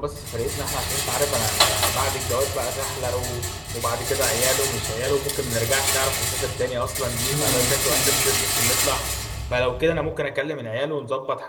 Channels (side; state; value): both; identical; correlation 1.00